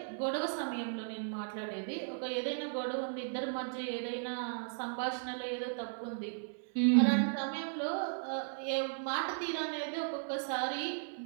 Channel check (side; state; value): left; silent; 54 dB below the other